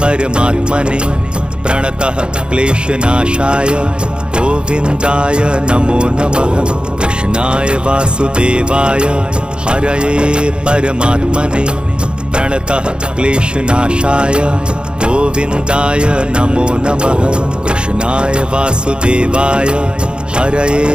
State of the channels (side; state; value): left; late; 0.052 ms